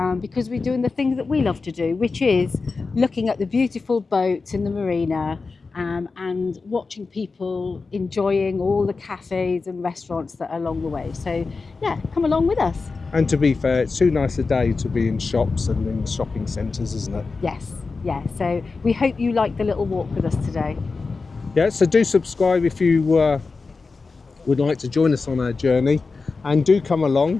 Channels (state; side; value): quieter; right; 4.2 dB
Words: because we're doing the things that we love to do, which is looking at the beautiful boats in the marina and watching people enjoying all the cafes and restaurants that are along the way. So, yeah, come along with us. And to be fair, it's too nice a day to be in shops and in shopping centres, isn't it? Yes. Yeah, so we hope you like the little walk with us today. Yeah, so do subscribe if you would like to join us on our journey, and do come